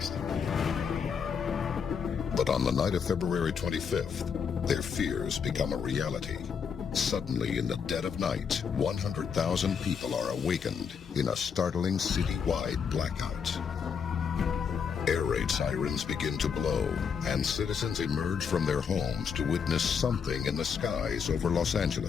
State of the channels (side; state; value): right; quieter; 6.6 dB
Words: But on the night of February 25th, their fears become a reality. Suddenly, in the dead of night, 100,000 people are awakened in a startling citywide blackout. Air raid sirens begin to blow, and citizens emerge from their homes to witness something in the skies over Los